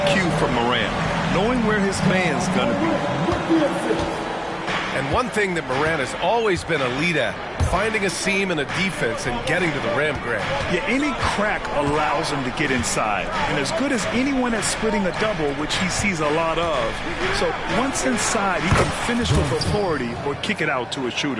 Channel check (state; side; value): identical; both; correlation 1.00